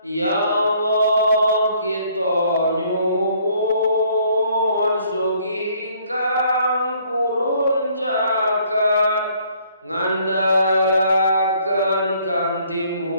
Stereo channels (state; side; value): inverted; both; correlation -0.62